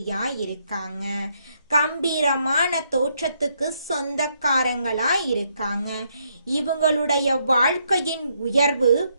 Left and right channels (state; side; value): inverted; both; correlation -0.75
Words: இருக்காங்க. கம்பீரமான தோற்றத்துக்கு சொந்தக்காரங்களா இருக்காங்க. இவங்களுடைய வாழ்க்கையின் உயர்வு